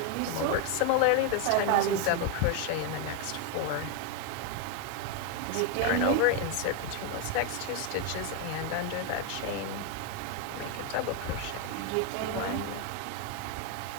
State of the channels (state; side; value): different; both; correlation 0.01